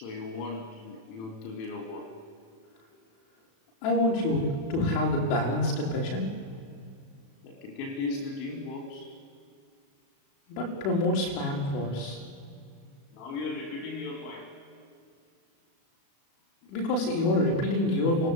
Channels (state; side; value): late; right; 36 ms